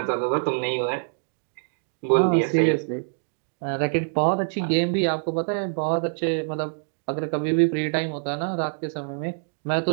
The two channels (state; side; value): silent; left; digital silence